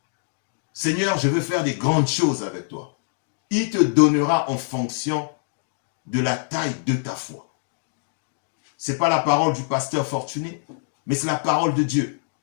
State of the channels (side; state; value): right; silent; digital silence